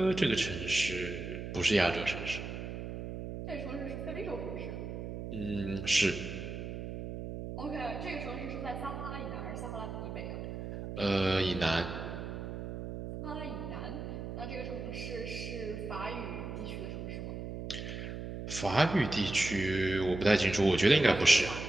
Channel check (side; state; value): right; noise; hum, 7 dB below the sound